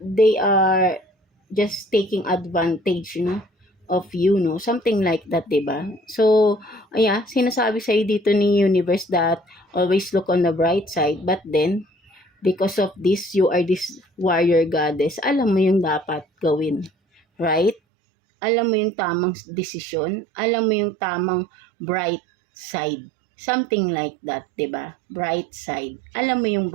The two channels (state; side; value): drops out; left; at 17.8 s